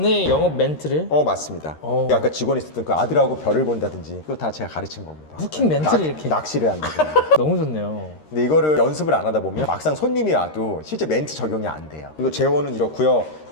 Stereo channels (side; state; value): right; late; 13 ms